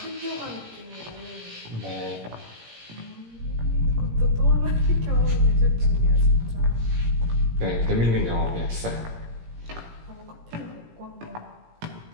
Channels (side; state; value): left; late; 17 ms